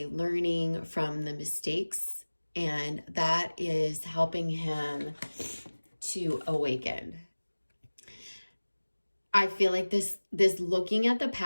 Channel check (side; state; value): both; inverted; correlation -1.00